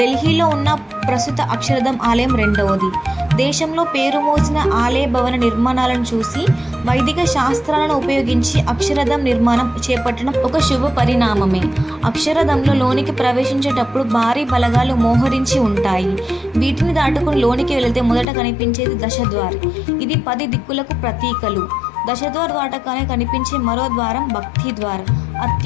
ఉన్న ప్రస్తుత అక్షరధామ్ ఆలయం రెండవది. దేశంలో పేరు మోసిన ఆలయ భవన నిర్మాణాలను చూసి వైదిక శాస్త్రాలను ఉపయోగించి అక్షరధామ్ నిర్మాణం చేపట్టడం ఒక శుభ పరిణామమే. అక్షరధామ్లో లోనికి ప్రవేశించేటప్పుడు భారీ బలగాలు మోహరించి ఉంటాయి. వీటిని దాటుకుని లోనికి వెళితే మొదట కనిపించేది దశద్వార్. ఇది 10 దిక్కులకు ప్రతీకలు. దశద్వార్ దాటగానే కనిపించే మరో ద్వారం భక్తి ద్వార్.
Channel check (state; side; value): drops out; right; at 18.2 s